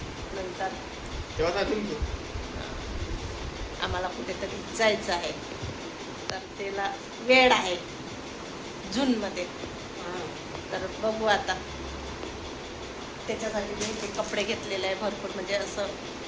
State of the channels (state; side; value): identical; both; correlation 1.00